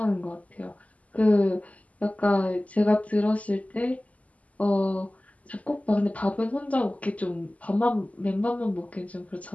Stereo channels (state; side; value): late; right; 0.072 ms